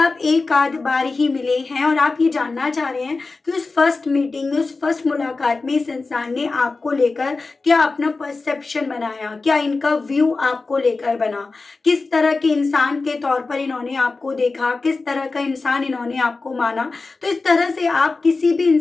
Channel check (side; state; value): right; quieter; 3.8 dB